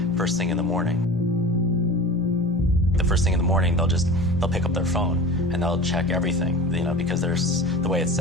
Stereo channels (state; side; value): normal; both; correlation 0.34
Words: first thing in the morning. The first thing in the morning, they'll pick up their phone and they'll check everything, because there's the way it's